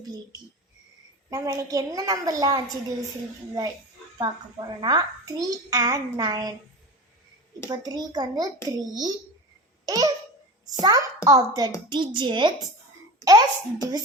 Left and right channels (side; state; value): both; normal; correlation 0.30